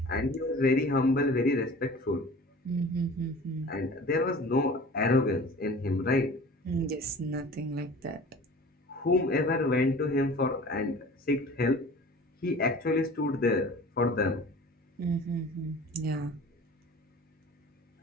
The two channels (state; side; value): normal; both; correlation 0.42